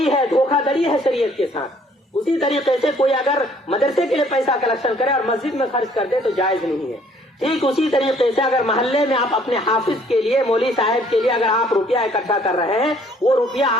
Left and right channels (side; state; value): both; normal; correlation 0.60